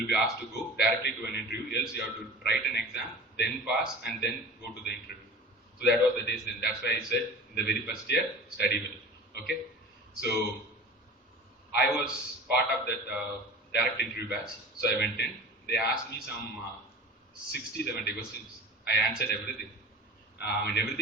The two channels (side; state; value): both; normal; correlation 0.38